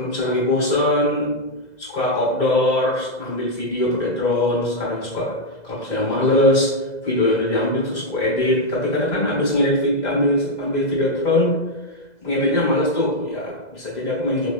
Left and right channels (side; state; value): right; late; 2.0 ms